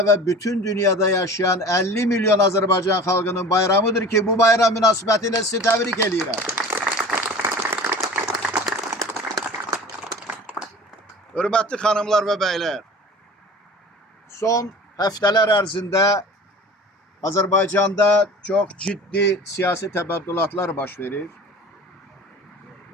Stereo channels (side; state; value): both; normal; correlation 0.40